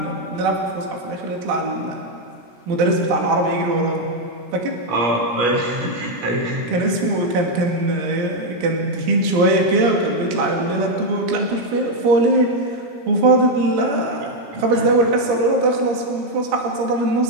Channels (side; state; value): left; late; 17 ms